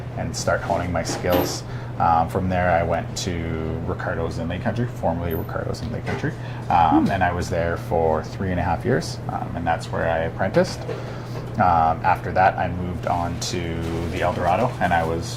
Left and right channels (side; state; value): both; identical; correlation 1.00